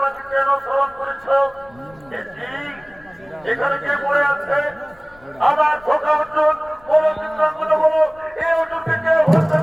কেন স্মরণ করেছ? এখানে কে পড়ে আছে? আমার ধোকা অর্জুন, বলো চিত্রাঙ্গন, বলো এই অর্জুনকে কে হত্যা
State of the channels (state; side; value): noise; left; rumble, 27 dB below the sound